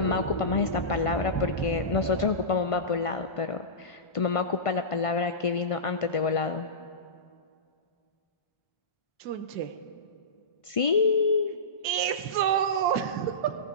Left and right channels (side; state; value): right; late; 1.5 ms